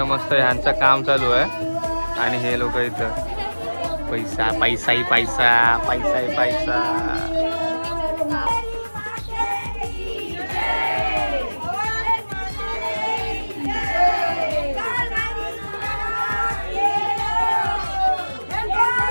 मस्त ह्यांचं काम चालू आहे आणि हे लोक इथं पैसा पैसा ही पैसा पैसा ही पैसा.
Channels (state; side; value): inverted; both; correlation -1.00